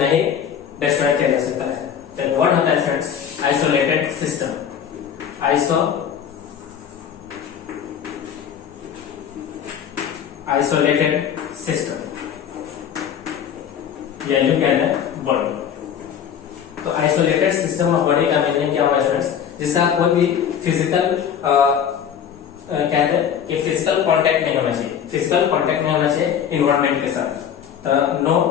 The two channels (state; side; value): quieter; right; 8.5 dB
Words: ही डिस्ट्रॉय किया जा सकता है। तो व्हाट होता है students? Isolated system. Isolated system या यूं कहते हैं बॉडी। तो आइसोलेटेड सिस्टम ऑफ बॉडी का मीनिंग क्या हुआ स्टूडेंट्स? जिसका कोई भी फिजिकल कहते हैं कि फिजिकल कांटेक्ट नहीं होना चाहिए, फिजिकल कांटेक्ट नहीं होना चाहिए इन्वायरमेंट के साथ। तो no